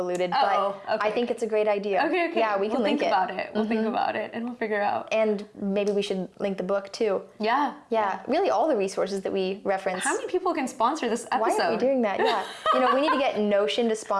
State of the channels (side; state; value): both; identical; correlation 1.00